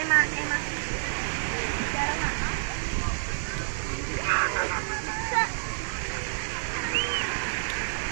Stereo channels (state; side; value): silent; left; digital silence